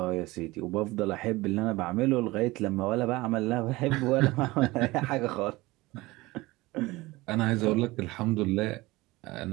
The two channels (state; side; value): quieter; left; 20.6 dB